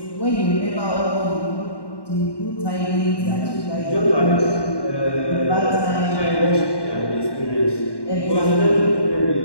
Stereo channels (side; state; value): right; late; 1.2 ms